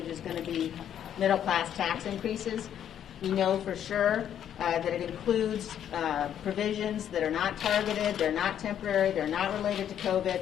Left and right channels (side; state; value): right; quieter; 9.9 dB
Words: is going to be middle-class tax increases. We know for sure that it includes provisions that are not targeted, they're not temporary, they're not related to COVID,